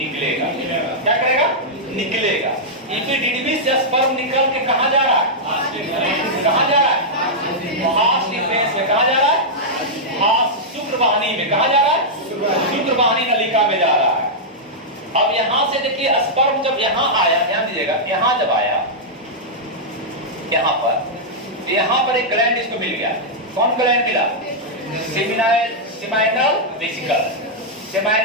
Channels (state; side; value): normal; both; correlation -0.08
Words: क्या करेगा? निकलेगा। एपिडिडमिस से स्पर्म निकल के कहाँ जा रहा है? कहाँ जा रहा है? हास डिफेंस में। कहाँ जा रहा है? हास शुक्रवाहिनी में। कहाँ जा रहा है? शुक्रवाहिनी नलिका में जा रहा है। अब यहाँ से देखिए, स्पर्म जब यहाँ आया, ध्यान दीजिएगा, यहाँ जब आया, यहाँ पर एक ग्लैंड इसको मिल गया। कौन ग्लैंड मिला? Seminal vesicle,